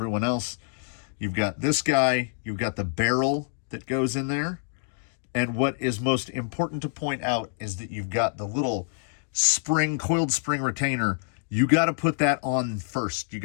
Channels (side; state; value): right; silent; digital silence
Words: else. You've got this guy, you've got the barrel that goes in there. And what is most important to point out is that you've got the little coiled spring retainer. You got to put that on first. You